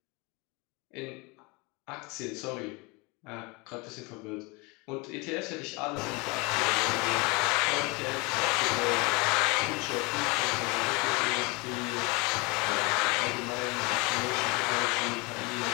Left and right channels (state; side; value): quieter; right; 27.4 dB